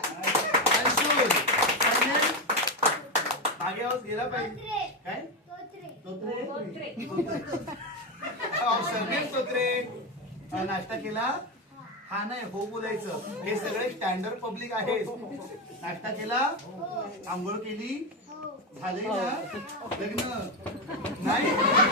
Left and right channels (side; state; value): both; normal; correlation 0.11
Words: अंशुल मागे आवाज गेला पाहिजे. काय तोत्रे सरनेम तोत्रे. नाश्ता केला? हा नाही हो बोलायचं. हे सगळे स्टँडर्ड पब्लिक आहे. नाश्ता केला? आंघोळ केली? झाले ना लग्न? नाही